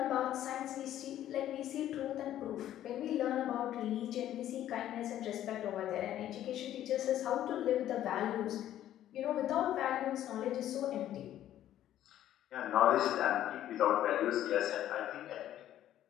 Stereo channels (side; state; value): right; quieter; 12.1 dB